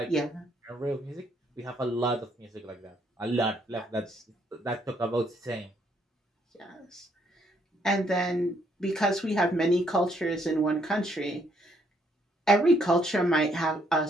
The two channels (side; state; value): both; normal; correlation 0.70